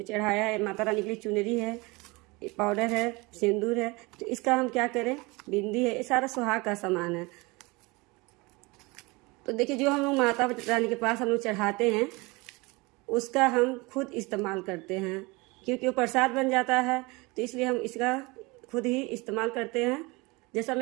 चढ़ाया है, माता रानी के लिए चुनरी है, पाउडर है, सिंदूर है। तो इसका हम क्या करें, बिंदी है, ये सारा सुहाग का सामान है। तो देखिए, जो हम लोग माता रानी के पास हम लोग चढ़ाते हैं उसका हम खुद इस्तेमाल करते हैं, क्योंकि वो प्रसाद बन जाता है। तो इसलिए हम इसका खुद ही इस्तेमाल करते हैं। जैसा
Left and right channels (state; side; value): quieter; left; 25.0 dB